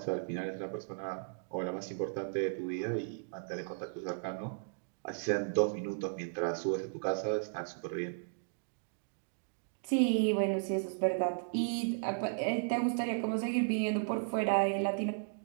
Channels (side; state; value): left; silent; digital silence